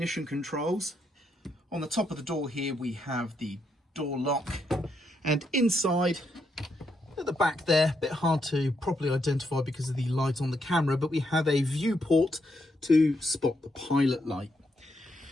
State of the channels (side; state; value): both; normal; correlation 0.79